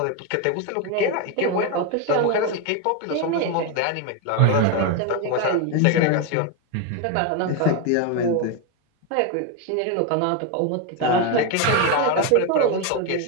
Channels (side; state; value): both; different; correlation 0.02